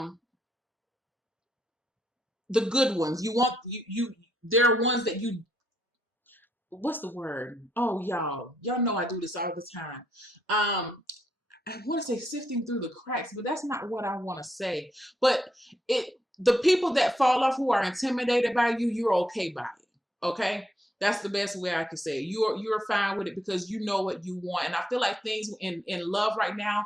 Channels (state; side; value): normal; both; correlation 0.77